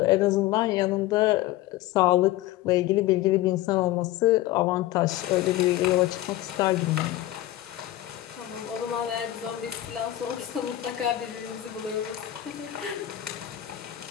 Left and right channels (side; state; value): right; quieter; 14.9 dB